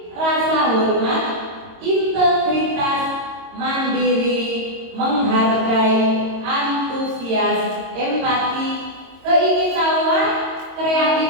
rasa hormat, integritas, mandiri, menghargai, antusias, empati, keingintahuan,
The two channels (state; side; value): late; left; 22 ms